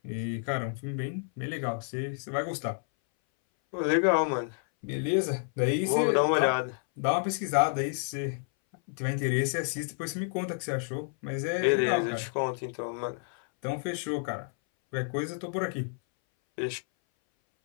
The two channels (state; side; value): silent; right; 58 dB below the other